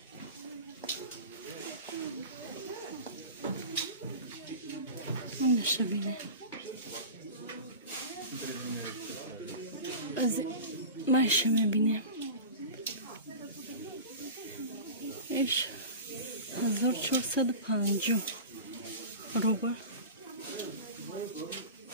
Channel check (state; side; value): inverted; both; correlation -0.31